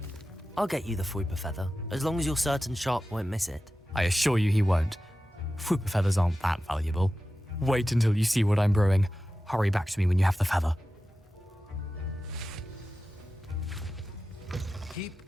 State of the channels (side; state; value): both; normal; correlation 0.94